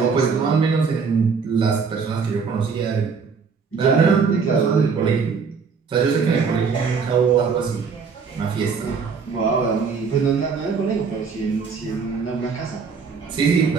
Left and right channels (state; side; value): quieter; left; 5.5 dB